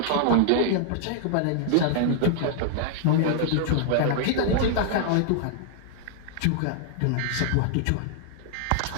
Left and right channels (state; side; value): different; both; correlation -0.01